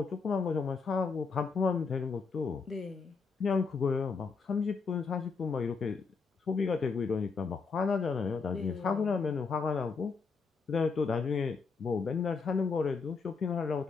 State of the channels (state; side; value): quieter; right; 5.0 dB